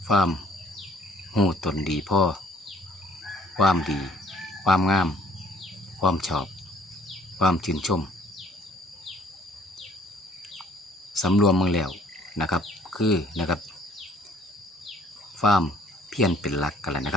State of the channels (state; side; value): normal; both; correlation 0.59